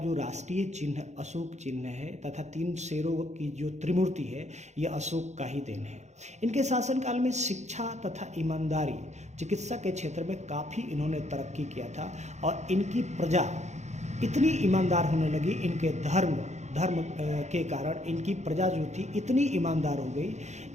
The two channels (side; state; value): left; late; 0.33 ms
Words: राष्ट्रीय चिन्ह अशोक चिन्ह है, तथा 3 शेरों की जो त्रिमूर्ति है, यह अशोक का ही देन है। इनके शासनकाल में शिक्षा तथा ईमानदारी, चिकित्सा के क्षेत्र में काफ़ी इन्होंने तरक्की किया था, और इनकी प्रजा इतनी ईमानदार होने लगी, इनके धर्म के कारण इनकी प्रजा जो थी इतनी ईमानदार हो गई,